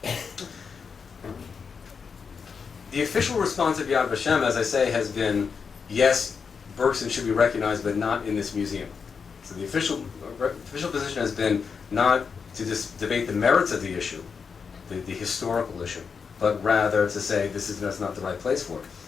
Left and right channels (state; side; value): quieter; right; 5.8 dB